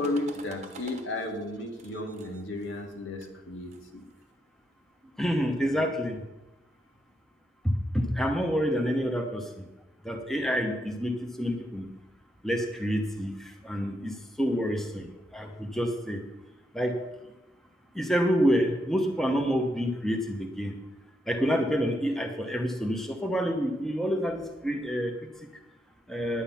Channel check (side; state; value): both; normal; correlation 0.80